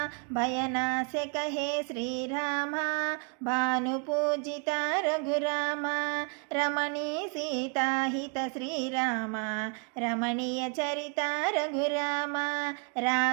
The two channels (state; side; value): quieter; left; 38.5 dB